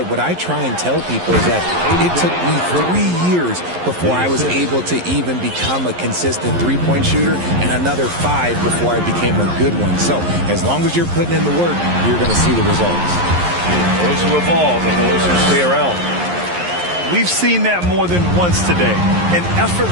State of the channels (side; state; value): left; late; 11 ms